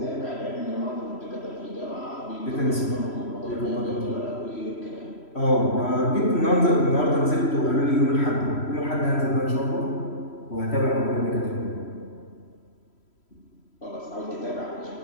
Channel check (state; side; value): late; right; 3.1 ms